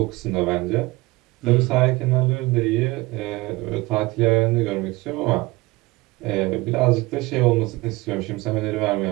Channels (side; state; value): left; quieter; 21.7 dB